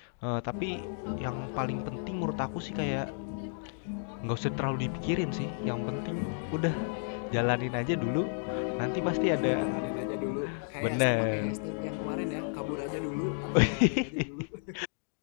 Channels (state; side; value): silent; right; digital silence